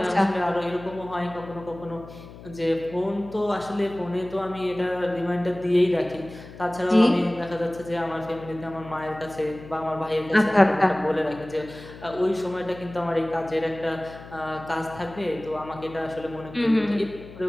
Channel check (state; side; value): noise; left; hum, 16 dB below the sound